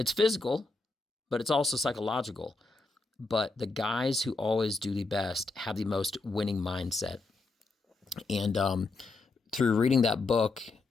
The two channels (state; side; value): quieter; right; 3.6 dB